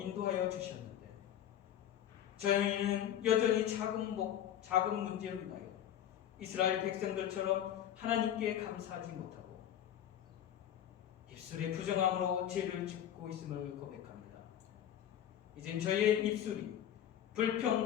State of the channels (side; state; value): right; quieter; 10.7 dB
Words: 주셨는데 저희는 여전히 작은 문제로 인하여 이스라엘 백성들처럼 하나님께 감사하지 못하고 입술의 부정함으로 죄를 짓고 있음을 고백합니다. 이젠 저희의 입술이